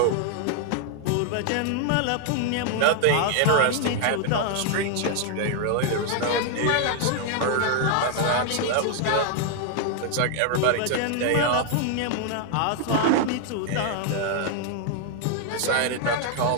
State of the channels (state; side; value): different; both; correlation 0.00